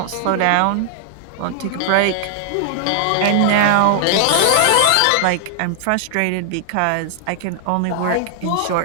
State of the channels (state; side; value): different; both; correlation 0.00